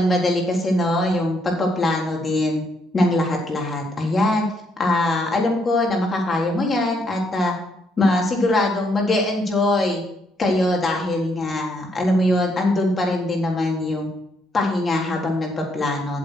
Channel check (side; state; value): both; normal; correlation 0.73